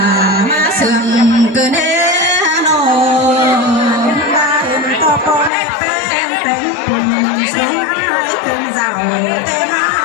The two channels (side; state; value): right; drops out; at 5.5 s